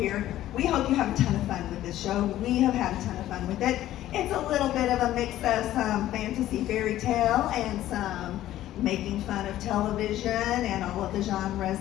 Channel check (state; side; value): quieter; right; 13.7 dB